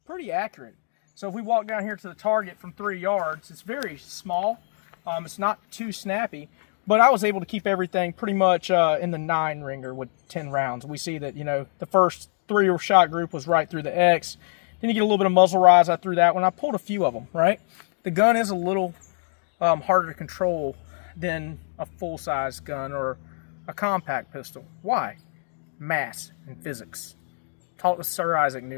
pretty accurate. So if we walk down here to the target from 3 yards, it's very small. It's not too snappy, but I was able to keep everything pretty much in the 9 ringer with 10 rounds. We see that, you know, the first 3 shot group was right through the X. Then you get a little bit of muzzle rise. I threw that one. I pulled a few of them, right? The gun is a little harder to control than a full-size gun or a compact pistol. Why? Mass and physics. Talked to Sir Isaac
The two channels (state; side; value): silent; right; digital silence